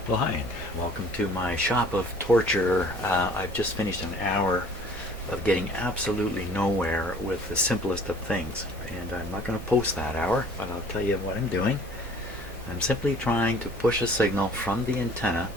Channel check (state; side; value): normal; both; correlation 0.51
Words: Well, hi, and welcome to my shop of torture. I've just finished an hour of getting absolutely nowhere with the simplest of things, and I'm not going to post that hour, but I'll tell you what I'm doing. I'm simply trying to push a signal from the antenna